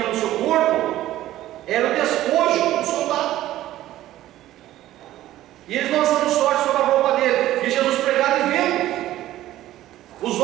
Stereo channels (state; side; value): quieter; left; 14.3 dB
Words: no seu corpo era o despojo do soldado. E eles lançando sorte sobre a roupa dele, e Jesus pregado e vendo. Os